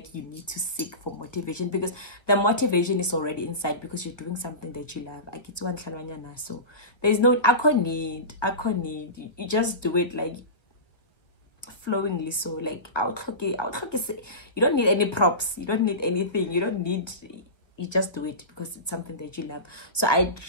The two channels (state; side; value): late; right; 1.5 ms